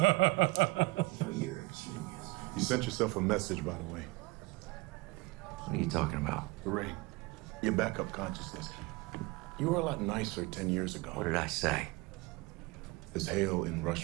You're a genius. You sent yourself a message, by the way. What are you talking about? The ring. Your backup consciousness. You were a lot nicer 10 years ago. What did I say? There's Hale in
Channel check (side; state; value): left; quieter; 23.2 dB